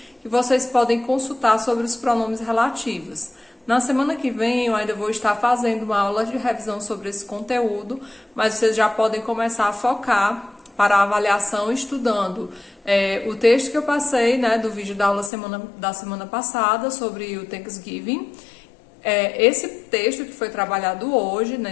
que vocês podem consultar sobre os pronomes relativos. Na semana que vem eu ainda vou estar fazendo uma aula de revisão sobre esse conteúdo, mas vocês já podem começar a focar para a avaliação estudando o texto que eu passei, do vídeo da aula da semana passada sobre o Thanksgiving. Esse texto que foi trabalhado hoje,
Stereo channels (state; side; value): drops out; right; at 15.3 s